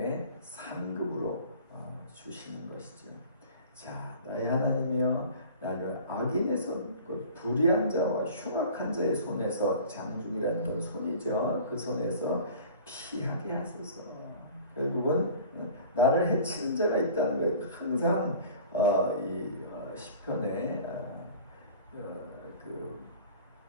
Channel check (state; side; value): inverted; both; correlation -0.44